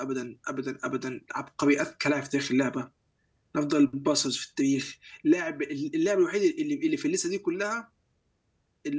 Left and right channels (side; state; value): both; identical; correlation 1.00